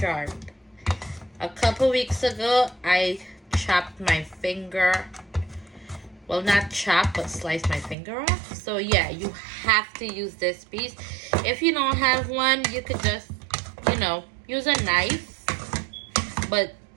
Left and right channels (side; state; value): left; drops out; at 8.0 s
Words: A couple weeks ago, I chopped my finger. Well, not chop, but slice my finger off. So yeah, you have to use this piece. If you don't have one, you could just, use a knife. But